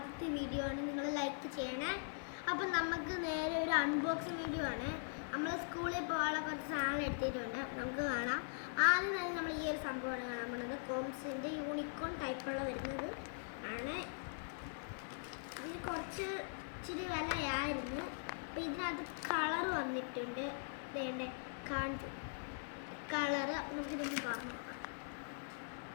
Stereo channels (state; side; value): silent; right; digital silence